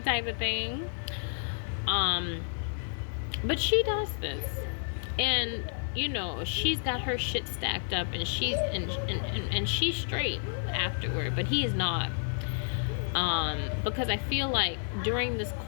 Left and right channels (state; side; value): silent; right; digital silence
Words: type of thing. But she does this, and you know she's got her shit stacked up, and she's straight afterward, but he is not. Because I feel like during this